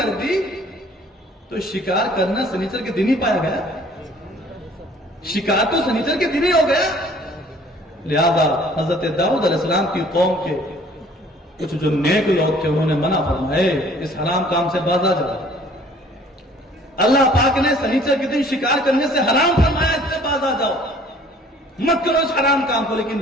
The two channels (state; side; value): normal; both; correlation 0.55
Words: دی تو شکار کرنا سنیچر کے دن ہی پایا گیا. شکار تو سنیچر کے دن ہی ہو گیا. لہذا حضرت داؤد علیہ السلام کی قوم کے کچھ جو نیک لوگ تھے انہوں نے منع فرمائے اس حرام کام سے باز آ جاؤ. اللہ پاک نے سنیچر کے دن شکار کرنے سے حرام فرمایا, اس سے باز آ جاؤ, مت کرو اس حرام کام کو. لیکن